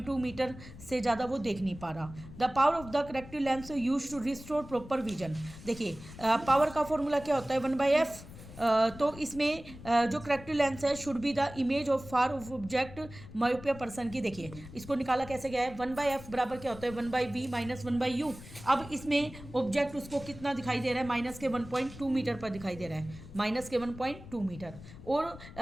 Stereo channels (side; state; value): left; noise; rumble, 16 dB below the sound